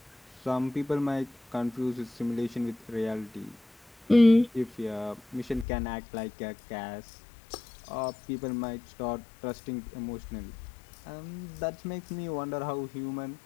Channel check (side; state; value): right; drops out; at 5.7 s